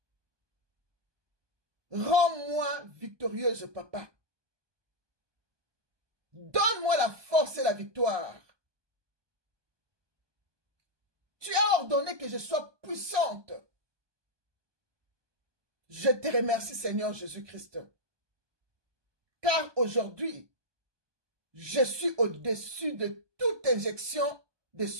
rends-moi victorieuse, Papa. Donne-moi la force et la victoire. Tu as ordonné que je sois puissante. Je te remercie, Seigneur Jésus-Christ. Car aujourd'hui, je suis au-dessus de toute injection de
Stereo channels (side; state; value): left; late; 1.2 ms